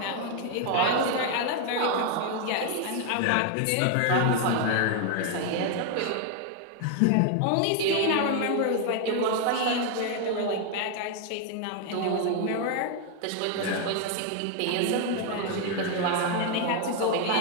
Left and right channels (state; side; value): different; both; correlation 0.01